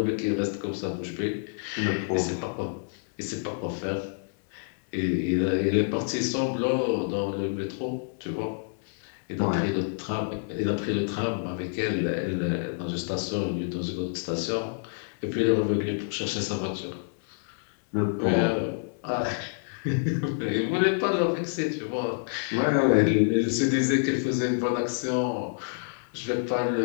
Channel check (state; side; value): silent; right; digital silence